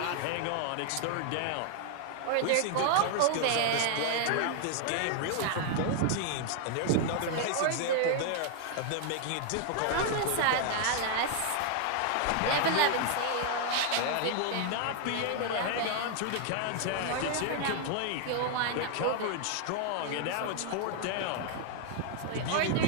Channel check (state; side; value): different; both; correlation 0.00